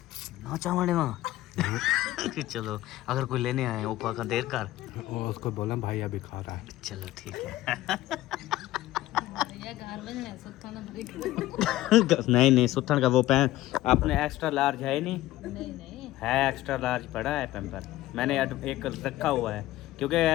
ना चावड़े वहाँ। चलो अगर कोई लेने आए वो का देर कर, उसको बोला भाई अभी खा रहा है। चलो ठीक है। ये घर बन है सुत्था ना भरी। नहीं नहीं, सुथन का वो पैन आपने एक्स्ट्रा लार्ज है नहीं? नहीं है एक्स्ट्रा लार्ज पड़ा है पैम्पर, मैंने एक रखा हुआ है, क्योंकि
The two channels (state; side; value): quieter; right; 15.9 dB